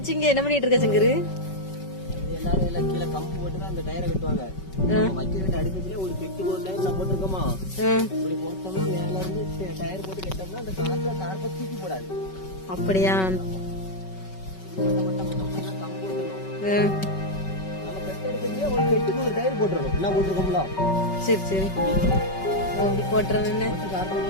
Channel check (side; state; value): right; late; 5.3 ms